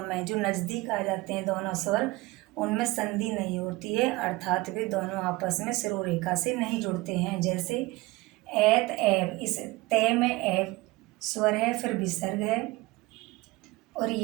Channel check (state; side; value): quieter; left; 21.1 dB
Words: में जो नज़दीक आ जाते हैं दोनों स्वर, उनमें संधि नहीं होती है, अर्थात वे दोनों आपस में सिरोरेखा से नहीं जुड़ते हैं। जैसे एत एव, इस तय में एव स्वर है, फिर विसर्ग है, और